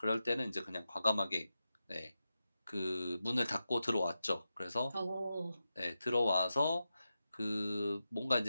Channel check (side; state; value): both; inverted; correlation -0.90